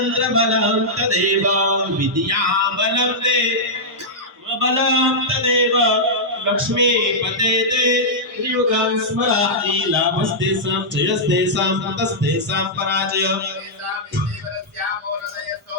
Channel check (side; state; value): both; normal; correlation -0.10